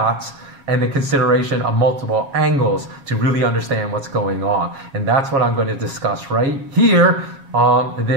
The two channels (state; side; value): late; left; 7.2 ms